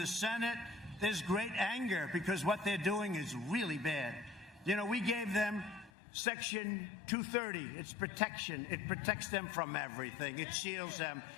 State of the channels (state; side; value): drops out; right; at 5.9 s